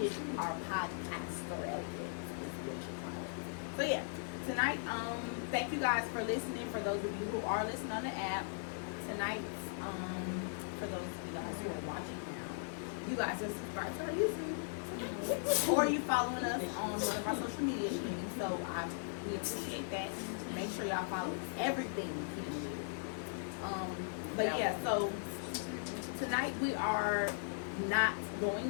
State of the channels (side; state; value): right; silent; digital silence